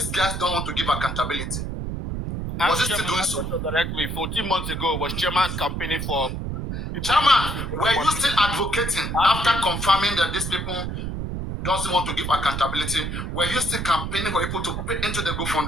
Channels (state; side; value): noise; right; rumble, 4 dB below the sound